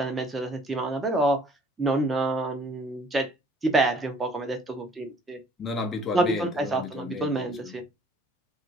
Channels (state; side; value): normal; both; correlation 0.57